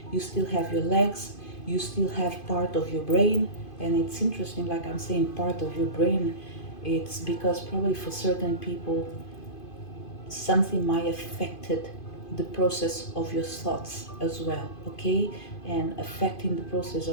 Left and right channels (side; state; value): right; late; 2.5 ms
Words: you still have your legs, you still have part of your brain. And it's interesting, like I'm saying part of your brain, it's because probably for certain people something might affected the process of your thoughts as well. Okay, and affecting the process